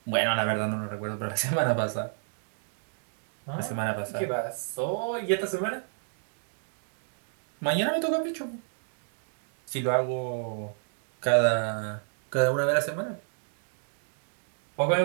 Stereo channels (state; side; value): silent; left; digital silence